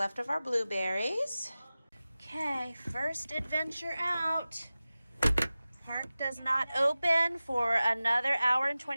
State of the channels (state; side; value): inverted; both; correlation -0.96